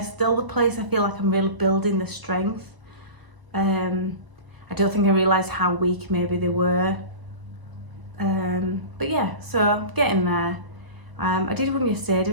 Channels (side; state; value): left; late; 1.0 ms